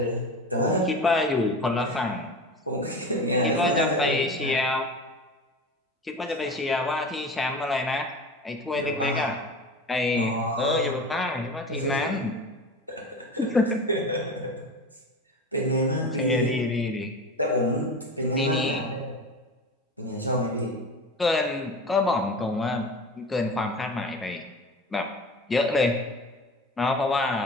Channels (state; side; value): normal; both; correlation 0.32